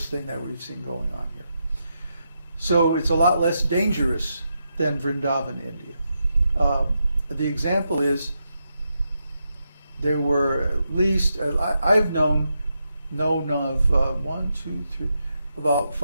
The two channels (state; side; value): inverted; both; correlation -0.84